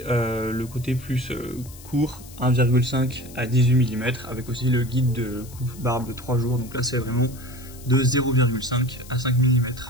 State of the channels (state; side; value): noise; left; hiss, 19 dB below the sound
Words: le côté plus court, 1,5 à 18 mm, avec aussi le guide de coupe barbe de 3 jours, donc là c'est vraiment de 0,5 à 5 mm.